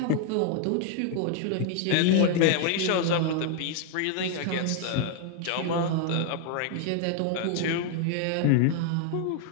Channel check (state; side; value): different; both; correlation 0.00